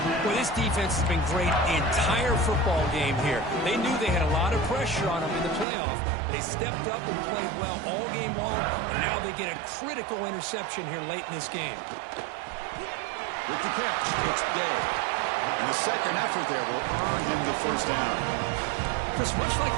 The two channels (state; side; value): drops out; left; at 5.7 s